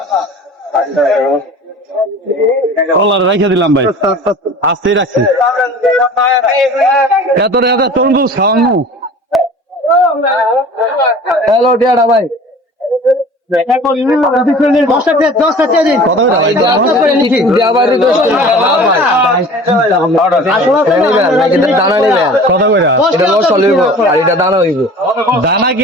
কলার রেখে দিলাম ভাই, আস্তেই রাখছি। এত তরমুজ খাওয়ানো। হ্যালো টিয়াটা ভাই, দানা কি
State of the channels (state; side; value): normal; both; correlation 0.43